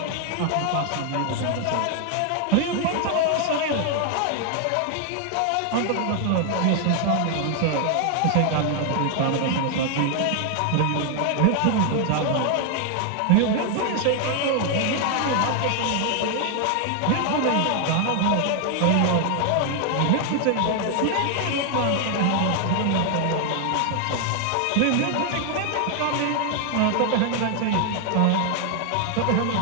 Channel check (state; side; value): different; both; correlation 0.00